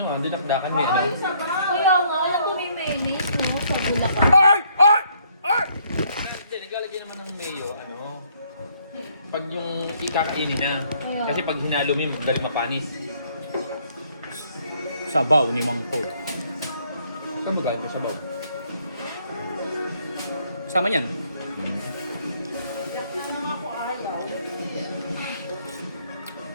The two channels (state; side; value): inverted; both; correlation -0.66